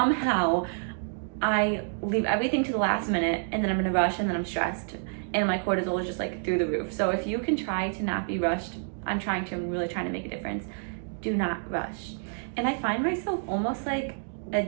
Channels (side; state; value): left; silent; digital silence